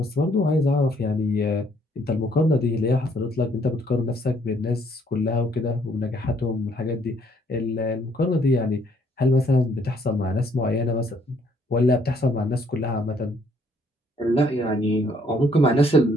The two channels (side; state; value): both; normal; correlation 0.66